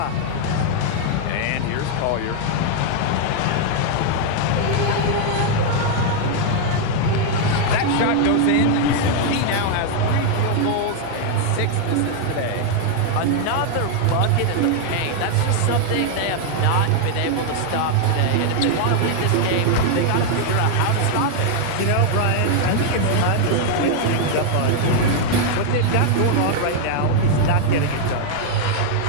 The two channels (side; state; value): both; different; correlation 0.00